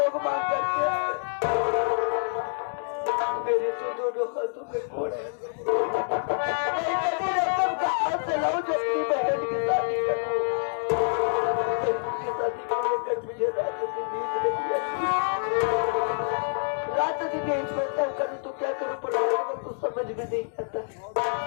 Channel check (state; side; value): silent; right; digital silence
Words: मांग करते हैं। मेरे तो दोनों हाथों में कोड़ है। रकम कहाँ से लाऊं जो अपनी बहन की शादी करूं। उसकी शादी को लेकर मुझे रात दिन नींद नहीं आती। रात दिन यही सोचता हूँ करूँ तो क्या करूँ पर में तो समझ में नहीं आता।